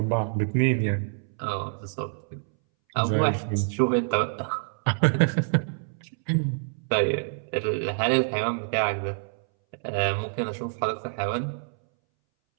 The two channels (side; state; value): left; silent; 60 dB below the other